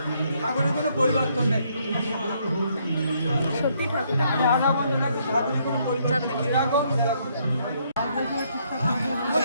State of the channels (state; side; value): inverted; both; correlation -0.70